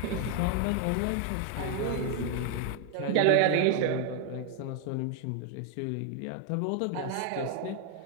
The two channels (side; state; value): both; different; correlation 0.01